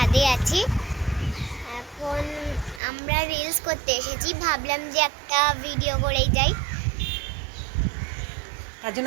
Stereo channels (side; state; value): left; drops out; at 2.8 s